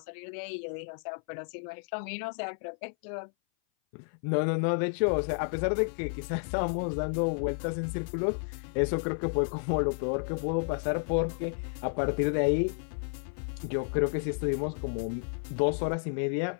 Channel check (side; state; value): right; silent; 57 dB below the other